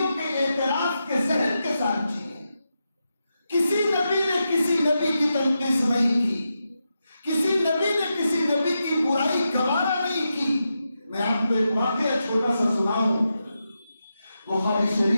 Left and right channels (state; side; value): inverted; both; correlation -0.88